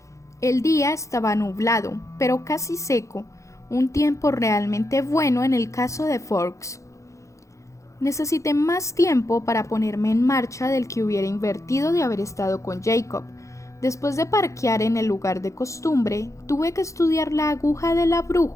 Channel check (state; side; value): late; right; 0.15 ms